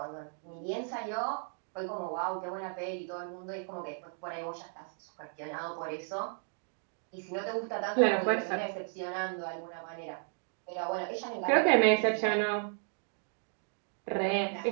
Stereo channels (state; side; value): silent; left; 55 dB below the other